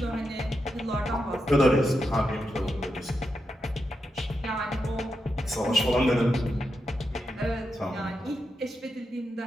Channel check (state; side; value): normal; both; correlation 0.86